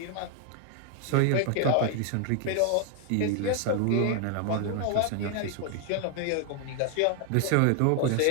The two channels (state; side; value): different; both; correlation 0.00